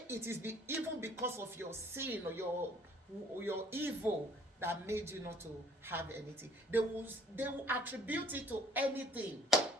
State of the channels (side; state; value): both; normal; correlation 0.56